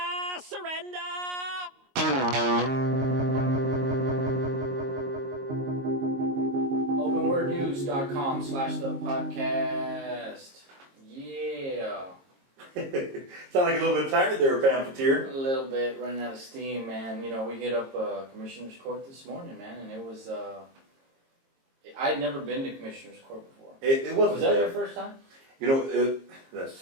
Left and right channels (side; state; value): left; late; 22 ms